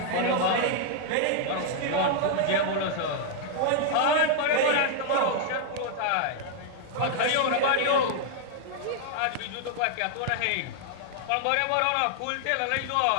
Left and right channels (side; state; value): both; different; correlation 0.00